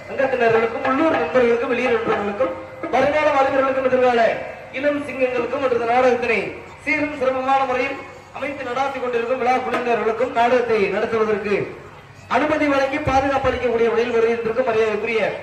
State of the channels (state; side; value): identical; both; correlation 1.00